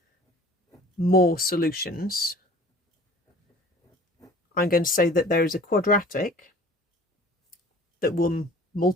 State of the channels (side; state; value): both; normal; correlation 0.47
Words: more solutions, I'm going to say that there is a quadratic that will,